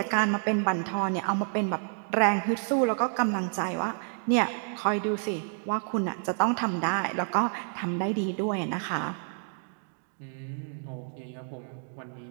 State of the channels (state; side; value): silent; left; 56 dB below the other